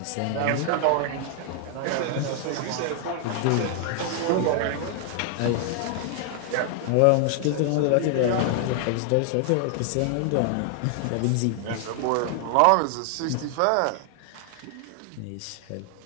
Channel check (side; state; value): both; different; correlation 0.00